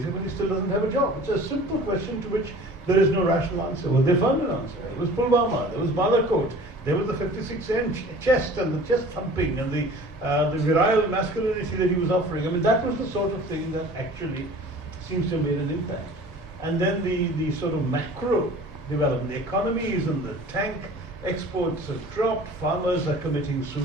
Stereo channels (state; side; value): normal; both; correlation 0.45